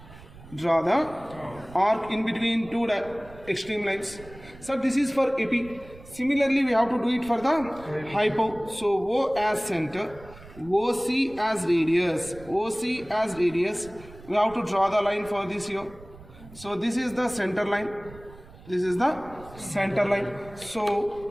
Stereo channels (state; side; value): noise; right; rumble, 20 dB below the sound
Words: Draw the arc in between two extreme lines. So this is for AP. Similarly, we have to do it for the hypo. So O as center, OC as radius, OC as radius. We have to draw the line for this here. So this is the center line. This is the center line. So